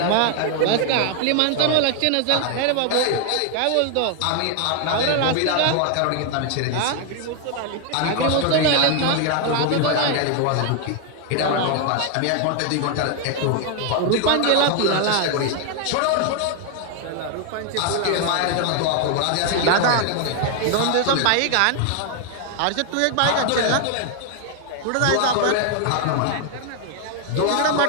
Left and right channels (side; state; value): both; different; correlation 0.00